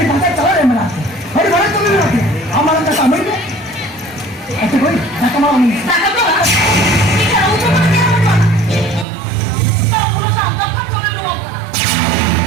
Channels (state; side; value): drops out; left; at 9.1 s